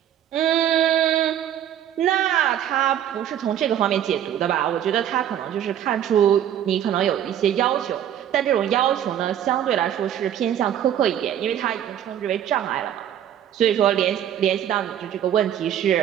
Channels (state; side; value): quieter; left; 10.4 dB